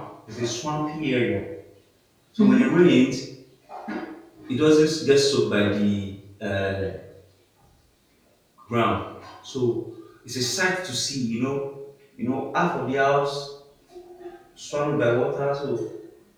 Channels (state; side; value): identical; both; correlation 1.00